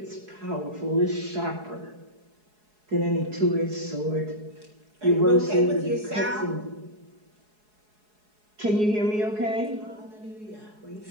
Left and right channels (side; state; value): left; late; 4.7 ms